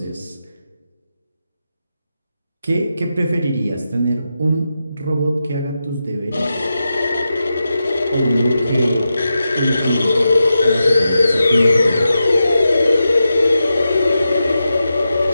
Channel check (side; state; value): both; inverted; correlation -0.89